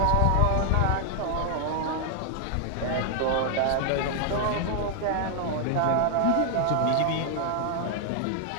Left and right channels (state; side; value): different; both; correlation 0.00